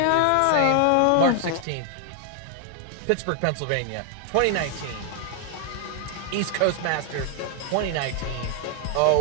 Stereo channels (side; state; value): both; different; correlation 0.00